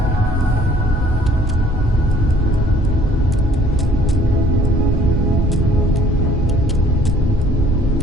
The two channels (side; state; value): both; normal; correlation 0.57